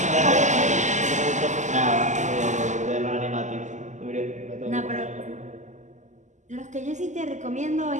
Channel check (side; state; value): left; late; 0.34 ms